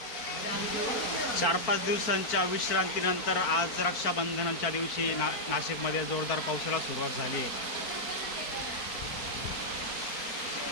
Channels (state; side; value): late; right; 4.4 ms